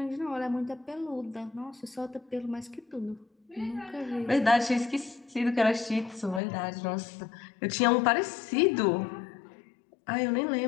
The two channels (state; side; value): drops out; right; at 6.4 s